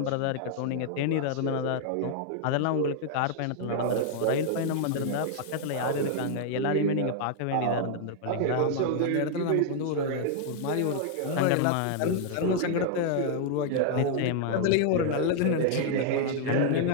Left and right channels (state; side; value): different; both; correlation -0.01